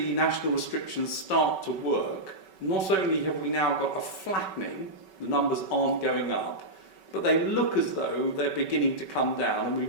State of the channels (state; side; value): late; right; 5.3 ms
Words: national restrictions start to work, not only have we now got a flattening, the numbers aren't going up, but they look as though they're beginning to come down, and we